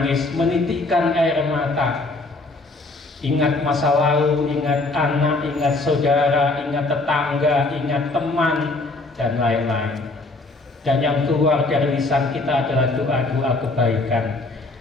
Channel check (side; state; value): right; quieter; 3.2 dB